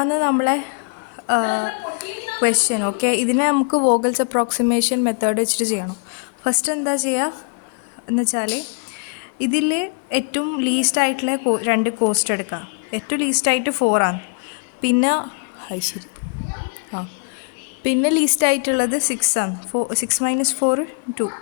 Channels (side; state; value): right; quieter; 39.4 dB